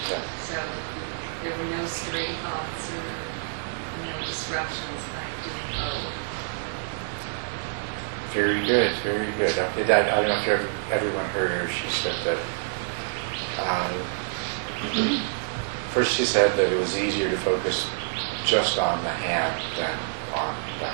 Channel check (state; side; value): silent; left; digital silence